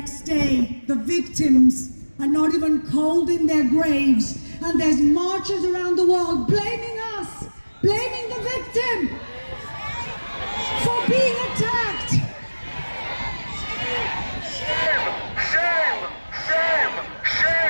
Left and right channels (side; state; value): both; inverted; correlation -1.00